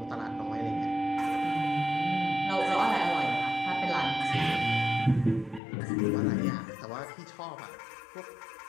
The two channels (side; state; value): right; drops out; at 5.6 s